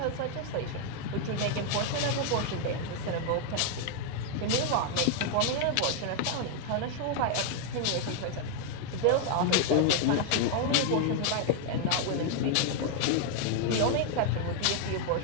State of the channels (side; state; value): both; different; correlation 0.00